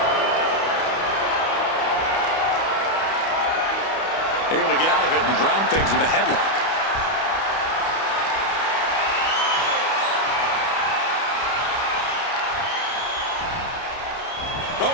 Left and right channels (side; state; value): right; late; 31 ms